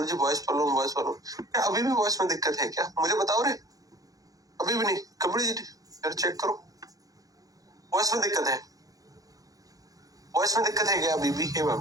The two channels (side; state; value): left; late; 0.17 ms